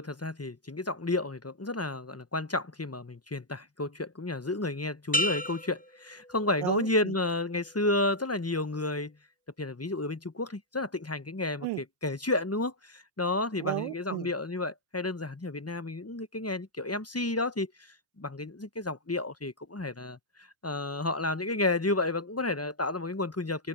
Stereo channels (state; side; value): normal; both; correlation -0.07